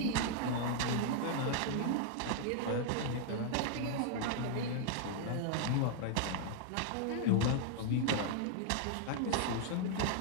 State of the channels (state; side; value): different; both; correlation 0.00